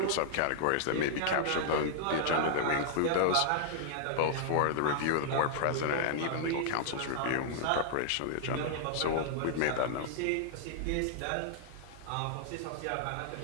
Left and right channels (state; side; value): different; both; correlation -0.01